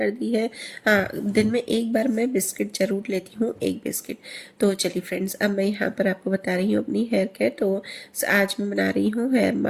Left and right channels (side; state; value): both; identical; correlation 1.00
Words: दी है। हाँ, दिन में एक बार मैं बिस्किट ज़रूर लेती हूँ, एक बिस्किट। तो चलिए फ्रेंड्स, अब मैं यहाँ पर आपको बता रही हूँ अपनी हेयर केयर। तो आज मैं बना रही हूँ हेयर